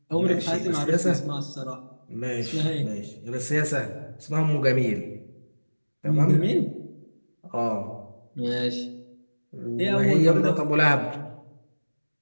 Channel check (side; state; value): both; inverted; correlation -1.00